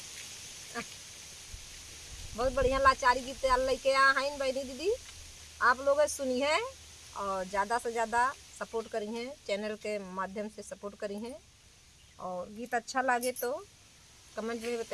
बहुत बढ़िया लाचारी गीत लेके आ हैं। बहनी, दीदी, आप लोग सुनी है और ज़्यादा से ज़्यादा सपोर्ट करी हैं, चैनल के माध्यम से सपोर्ट करी हैं। और गीत अच्छा लगे तो कमेंट में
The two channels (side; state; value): both; identical; correlation 1.00